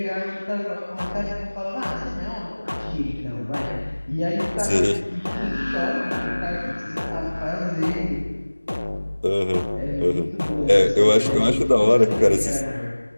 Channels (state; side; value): inverted; both; correlation -1.00